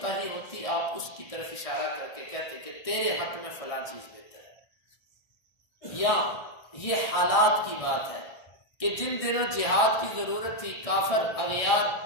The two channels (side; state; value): right; late; 1.6 ms